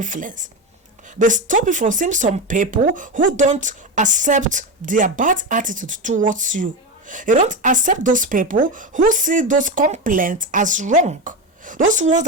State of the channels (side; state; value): both; normal; correlation 0.17